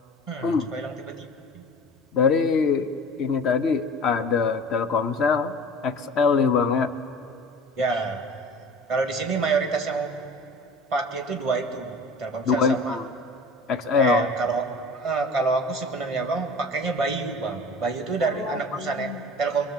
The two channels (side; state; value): both; normal; correlation 0.40